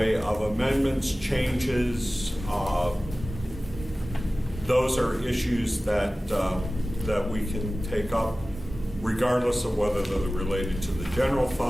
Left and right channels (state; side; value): normal; both; correlation 0.96